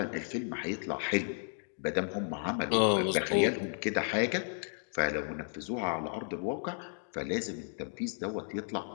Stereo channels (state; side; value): silent; right; digital silence